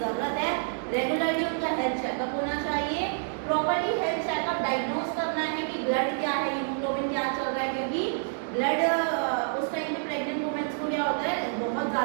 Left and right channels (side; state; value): left; silent; digital silence